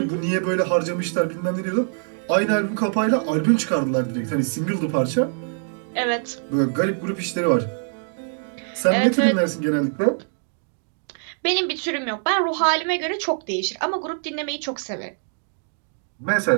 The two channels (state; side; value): silent; left; 63 dB below the other